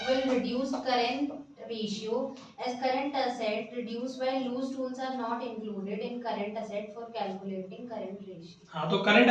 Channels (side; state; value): both; identical; correlation 1.00